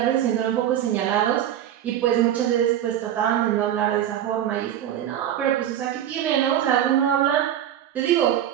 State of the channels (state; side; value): quieter; left; 11.0 dB